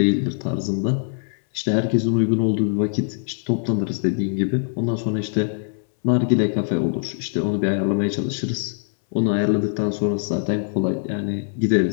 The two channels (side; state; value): right; silent; 64 dB below the other